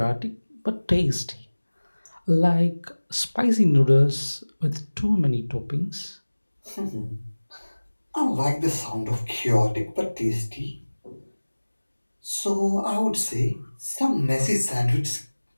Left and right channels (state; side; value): inverted; both; correlation -1.00